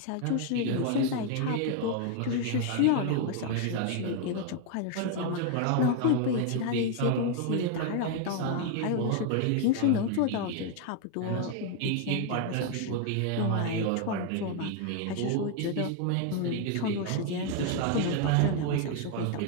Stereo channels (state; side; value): different; both; correlation 0.00